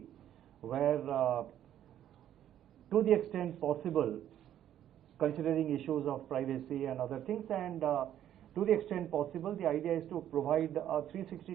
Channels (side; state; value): left; quieter; 11.1 dB